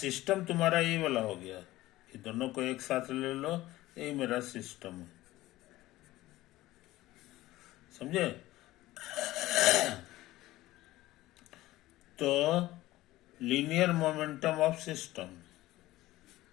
तुम्हारा ये वाला हो गया, ये दोनों को एक साथ ले लो, ये मेरा सिस्टम है, समझे? तो linear momentum of system,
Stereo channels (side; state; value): right; quieter; 17.0 dB